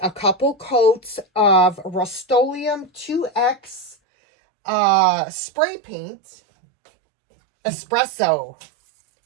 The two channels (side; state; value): left; drops out; at 4.0 s